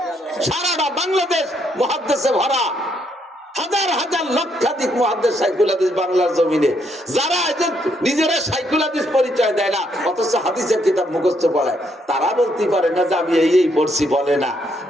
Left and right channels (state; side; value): normal; both; correlation 0.73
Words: সারাটা বাংলাদেশ মুহাদ্দিসে ভরা, হাজার হাজার লক্ষাধিক মুহাদ্দিস শাইখুল হাদিস বাংলার জমিনে, যারা নিজেরা শাইখুল হাদিস পরিচয় দেয় না অথচ হাদিসের কিতাব মুখস্থ পড়ায়, তারা বলতে পারে না যে আমি এই পড়ছি, বলে না।